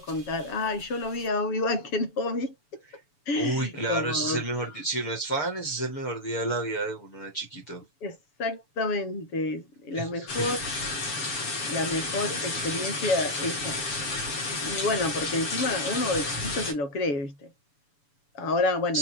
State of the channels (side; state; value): right; late; 7.0 ms